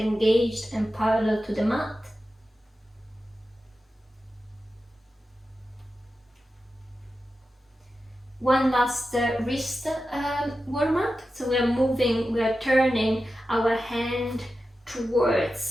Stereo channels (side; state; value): both; normal; correlation 0.92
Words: and parallel to the mat. One last wrist warm up. So we are turning our hand